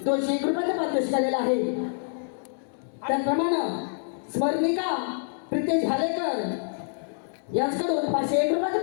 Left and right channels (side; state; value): right; silent; digital silence